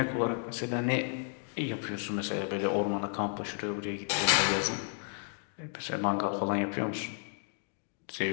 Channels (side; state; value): right; silent; 56 dB below the other